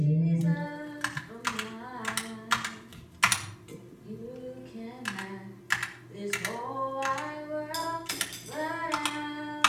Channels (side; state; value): both; identical; correlation 1.00